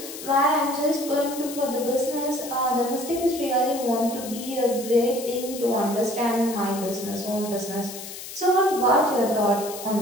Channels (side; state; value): left; noise; hiss, 11 dB below the sound